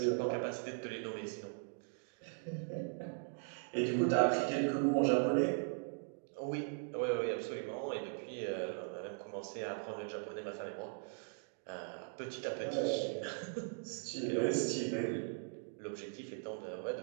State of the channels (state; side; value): silent; left; 52 dB below the other